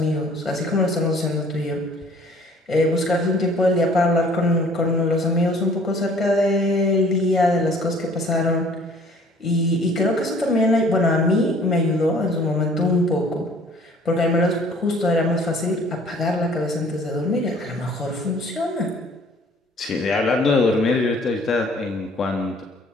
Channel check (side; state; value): both; normal; correlation 0.55